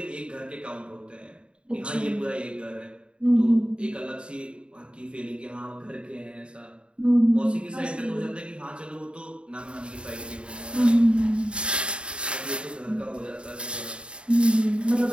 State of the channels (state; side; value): late; left; 0.054 ms